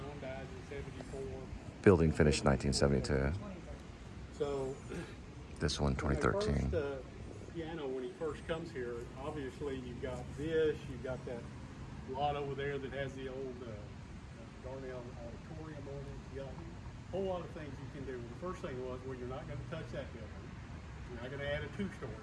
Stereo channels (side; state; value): both; identical; correlation 1.00